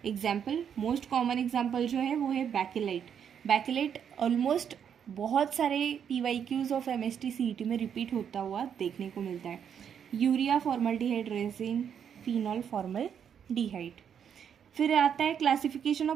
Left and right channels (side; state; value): left; quieter; 8.1 dB